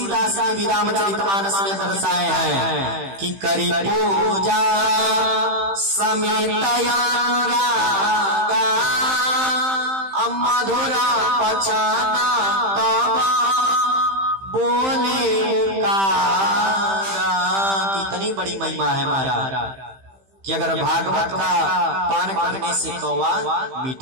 ने भी रामचरितमानस में दर्शाए हैं कि करी पूजा समेतया रागा मधुरा पचाना तबा बोले उकारा। कितनी बड़ी महिमा है महाराज कि अगर भागवत का पान करने से कौवा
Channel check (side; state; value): left; late; 15 ms